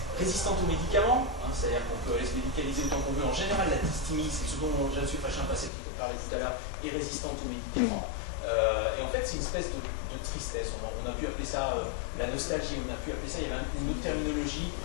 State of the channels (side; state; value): right; drops out; at 5.7 s